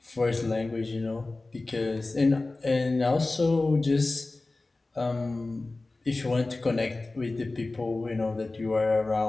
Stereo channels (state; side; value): quieter; right; 3.2 dB